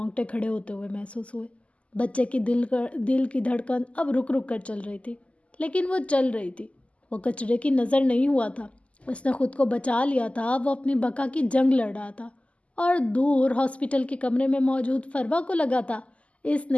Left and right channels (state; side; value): late; right; 0.061 ms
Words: کھڑے ہوتے ہوئے محسوس ہوئے۔ بچے کی دل کی دھڑکن اب رک رک کر چل رہی تھی، لیکن وہ چل رہی تھی۔ وہ کچرے کی نظر نہیں ہوا تھا، اس نے خود کو بچا لیا تھا، وہ اپنی بقا کی جنگ لڑ رہا تھا۔ اور دور ہاسپٹل کے کمرے میں موجود فروا کو لگا تھا اس